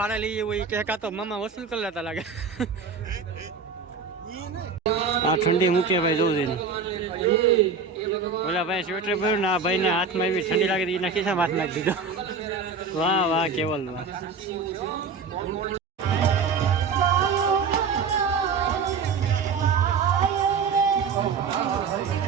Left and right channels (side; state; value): left; quieter; 5.2 dB